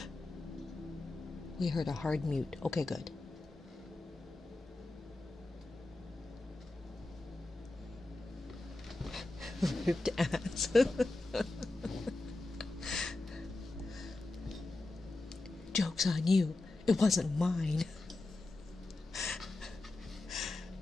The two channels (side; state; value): right; quieter; 3.0 dB